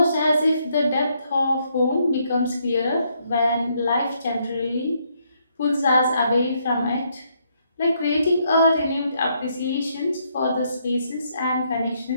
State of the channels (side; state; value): both; inverted; correlation -0.73